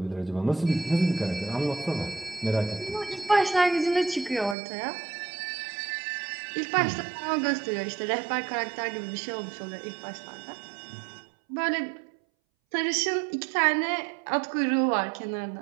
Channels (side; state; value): left; drops out; at 4.5 s